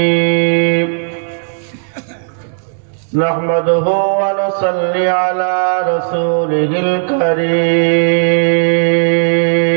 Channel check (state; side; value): silent; left; digital silence